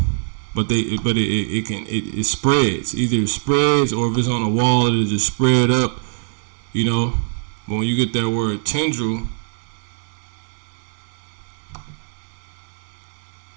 But it spreads. Either it spreads, or if it's on a wall, it'll just spread up. But when you get that word tendril,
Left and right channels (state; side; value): silent; left; digital silence